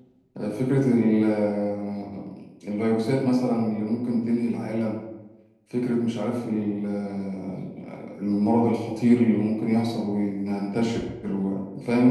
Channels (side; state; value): both; identical; correlation 1.00